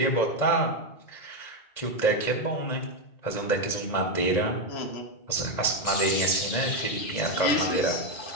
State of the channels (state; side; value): late; right; 1.8 ms